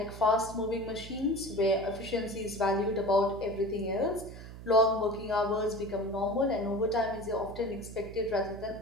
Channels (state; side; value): noise; right; hum, 13 dB below the sound